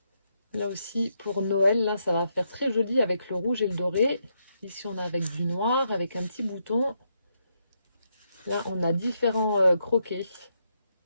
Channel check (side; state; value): both; inverted; correlation -0.80